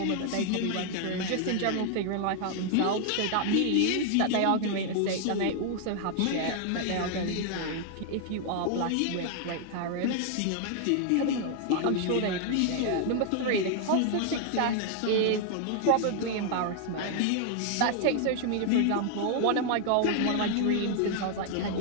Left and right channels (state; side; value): different; both; correlation 0.00